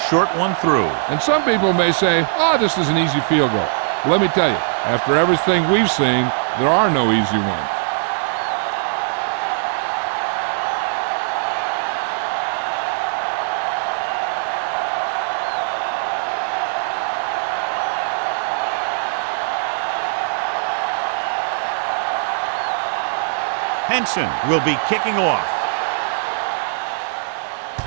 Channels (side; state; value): left; silent; digital silence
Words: one through. And some people may say, oh, this is an easy field goal. Well, let me tell you, after everything we've seen, there are no easy ones. Henson will be kicking off.